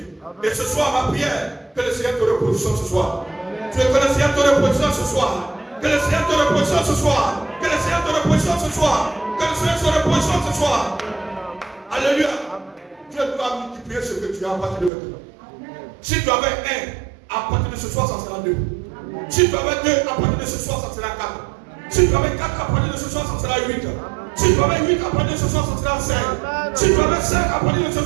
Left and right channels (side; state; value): left; drops out; at 14.9 s